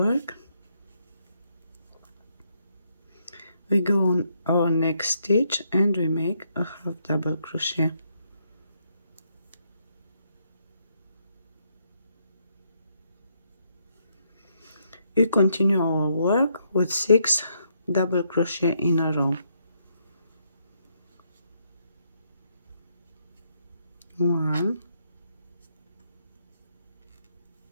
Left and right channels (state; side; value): inverted; both; correlation -0.75